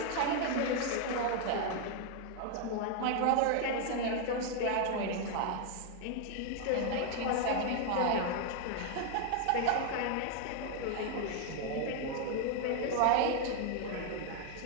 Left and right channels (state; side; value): different; both; correlation 0.00